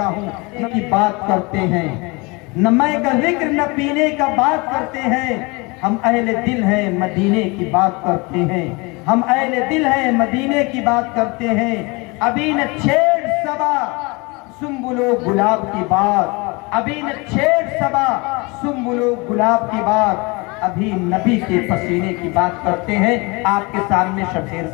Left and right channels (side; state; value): right; quieter; 26.9 dB